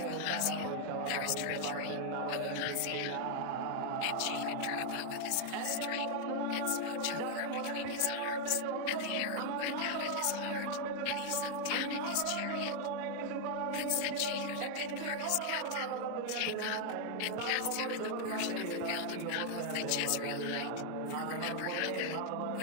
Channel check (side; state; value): both; different; correlation 0.00